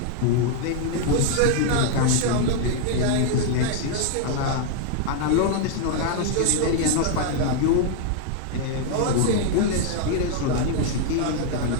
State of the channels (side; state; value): both; different; correlation 0.00